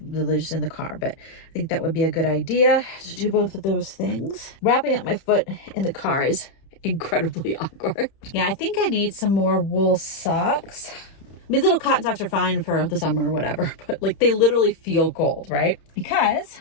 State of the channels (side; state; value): right; late; 31 ms